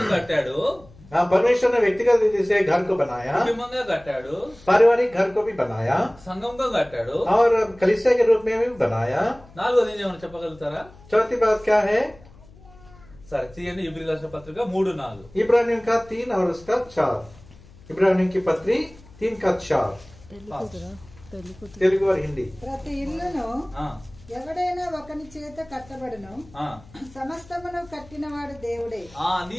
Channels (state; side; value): noise; left; hum, 23 dB below the sound